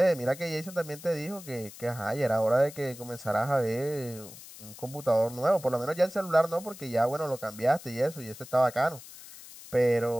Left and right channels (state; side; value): noise; left; hiss, 17 dB below the sound